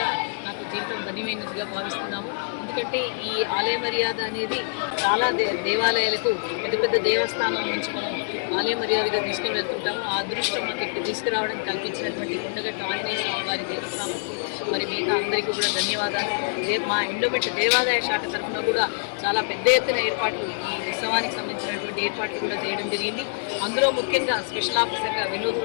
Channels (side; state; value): right; silent; 56 dB below the other